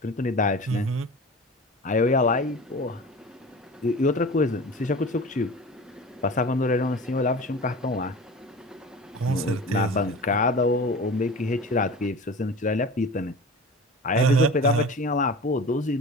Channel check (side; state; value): both; normal; correlation 0.35